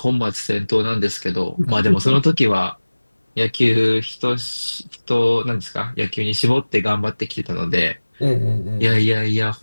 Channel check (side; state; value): both; inverted; correlation -1.00